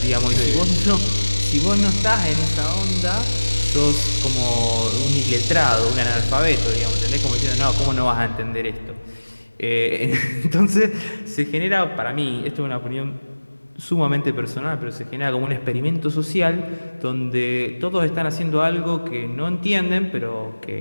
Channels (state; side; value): inverted; both; correlation -1.00